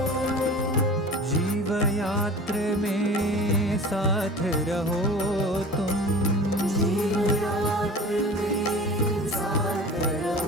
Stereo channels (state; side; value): normal; both; correlation 0.39